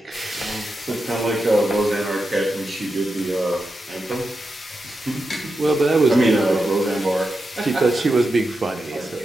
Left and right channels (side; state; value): both; normal; correlation 0.88